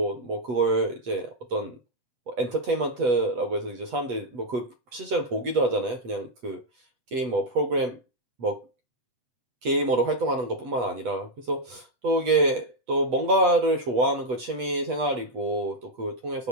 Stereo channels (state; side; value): late; left; 8.1 ms